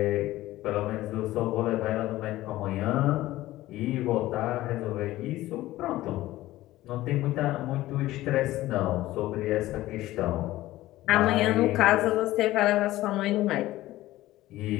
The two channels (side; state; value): right; quieter; 16.3 dB